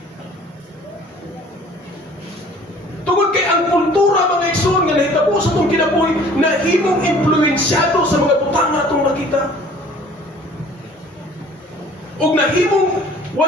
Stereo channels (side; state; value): both; normal; correlation 0.51